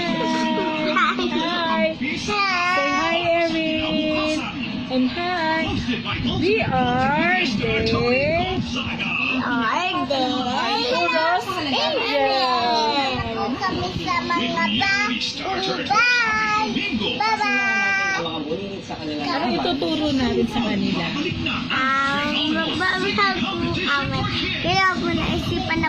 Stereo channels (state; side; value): identical; both; correlation 1.00